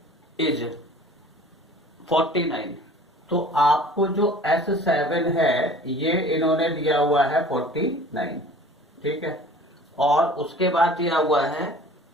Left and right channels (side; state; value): both; normal; correlation 0.46